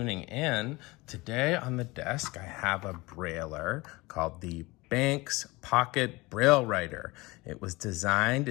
in. Today on the desk, I have a Brailler called the Banks Pocket Braille Writer. It was designed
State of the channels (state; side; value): quieter; right; 22.7 dB